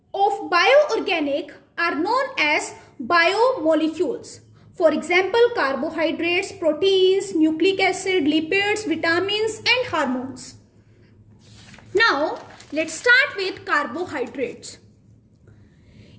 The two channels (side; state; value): both; identical; correlation 1.00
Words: of bioorganic are known as biomolecules. For example, carbohydrates, proteins, nucleic acid, lipids, vitamins and hormones. Now, let's start with carbohydrates.